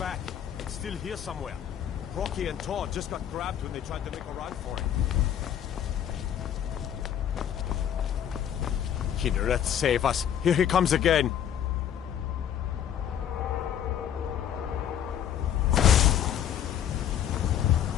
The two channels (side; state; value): right; quieter; 9.7 dB